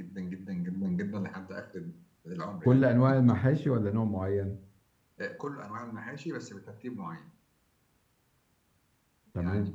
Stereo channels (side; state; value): both; identical; correlation 1.00